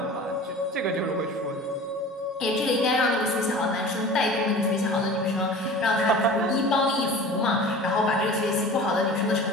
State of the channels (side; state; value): both; normal; correlation 0.39